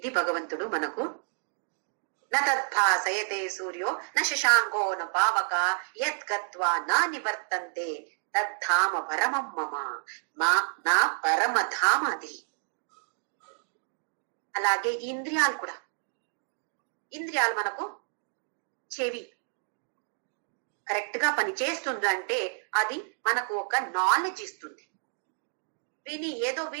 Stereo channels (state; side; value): silent; left; digital silence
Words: భగవంతుడు మనకు న తద్భాసయతే సూర్యో న శశాంకో న పావక యత్ గత్వా నా నివర్తంతే తద్ధామ పరమం మమ, నా పరమధామ అది. అలాగే ఇంద్రియాలు కూడా. ఇంద్రియాలు మనకు చెవి కరెక్ట్ గా పని చేస్తుందంటే అది మనకు ఒక నాలెడ్జ్ ఇస్తుంది. ఏదో